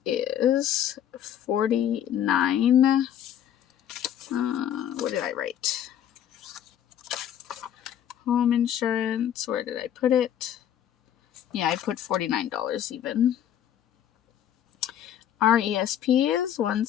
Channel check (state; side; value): quieter; right; 10.3 dB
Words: is $49. What did I write? home insurance. Where did I put it? Yeah, I put $49 even. Our ESP is